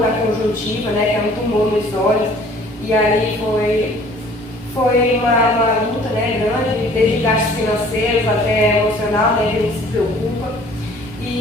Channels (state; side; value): normal; both; correlation 0.53